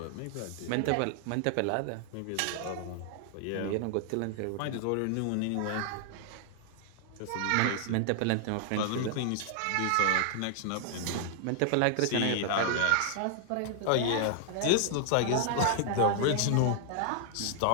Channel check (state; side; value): different; both; correlation 0.00